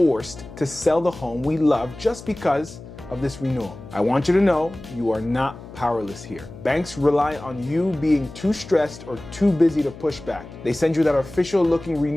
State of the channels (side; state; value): left; noise; hum, 16 dB below the sound